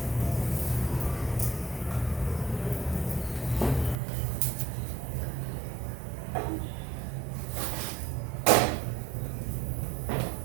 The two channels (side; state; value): left; drops out; at 4.0 s